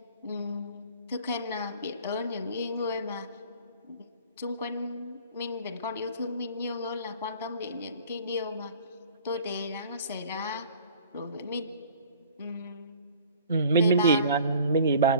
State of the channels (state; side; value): inverted; both; correlation -0.48